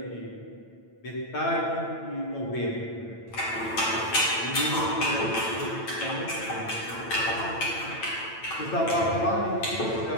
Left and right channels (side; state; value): right; late; 8.9 ms